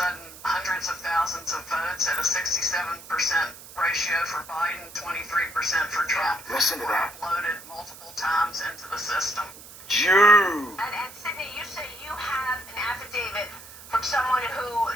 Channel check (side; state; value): right; noise; hiss, 17 dB below the sound